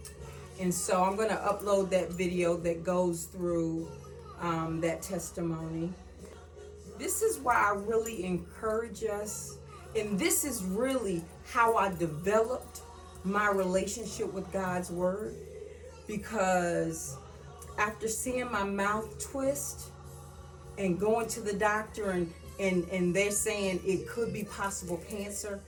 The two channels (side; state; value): both; identical; correlation 1.00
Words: And so I'm going to upload that video that goes through that testimony. This is why I really encourage us, and this is really how I developed my relationship with God's word, because after seeing my mouth twist and going to the doctor and they're saying it could be possible cancer,